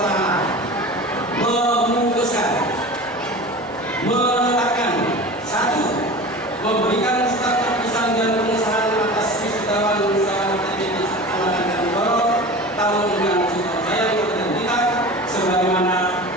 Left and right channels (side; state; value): both; normal; correlation 0.34